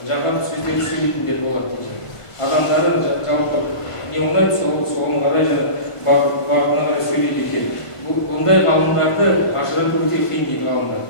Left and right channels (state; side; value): late; right; 1.5 ms